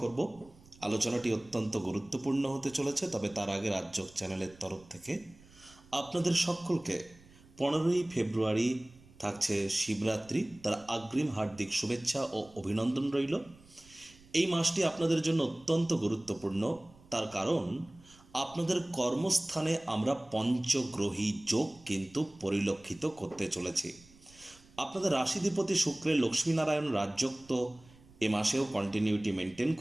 করব। আলোচনাটি অত্যন্ত গুরুত্বপূর্ণ হতে চলেছে, তবে তার আগে রাজযোগ চ্যানেলের তরফ থেকে আপনাদের সকলকে 15ই ফেব্রুয়ারি থাকছে শিবরাত্রি, তার অগ্রিম হার্দিক শুভেচ্ছা ও অভিনন্দন রইল। এই মাসটি আপনাদের জন্য অত্যন্ত গুরুত্বপূর্ণ, তার কারণ আপনাদের কর্মস্থানে আমরা পঞ্চগ্রহী যোগ কিন্তু পরিলক্ষিত করতে চলেছি। আপনাদের রাশিধিপতি শুক্রের লক্ষ্মীনারায়ণ রাজযোগ তো এ মাসেও কন্টিনিউটি মেনটেন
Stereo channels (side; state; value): right; noise; rumble, 25 dB below the sound